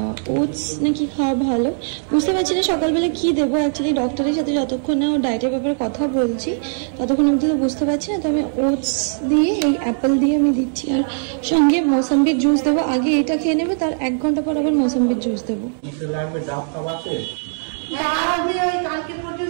ওটস নাকি খাওয়া ভালো, বুঝতে পারছি না সকালবেলা কী দেবো। অ্যাকচুয়ালি ডক্টরের সাথে যতক্ষণ না ও ডায়েটের ব্যাপারে কথা বলছি ততক্ষণ অবধি তো বুঝতে পারছি না, তো আমি ওটস দিয়ে এই অ্যাপেল দিয়ে আমি দিচ্ছি, আর সঙ্গে মৌসাম্বির জুস দেবো। আগে এটা খেয়ে নেবে, তার 1 ঘন্টা পর আবার মৌসাম্বির জুস দেবো।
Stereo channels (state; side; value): silent; left; 66 dB below the other